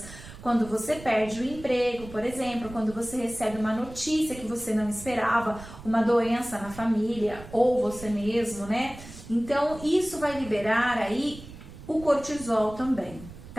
Quando você perde o emprego, por exemplo, quando você recebe uma notícia que você não esperava, uma doença na família, ou você mesmo, né? Então, isso vai liberar aí o cortisol também,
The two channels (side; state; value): right; noise; rumble, 16 dB below the sound